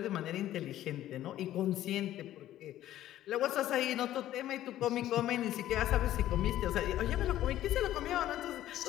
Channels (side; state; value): right; quieter; 13.2 dB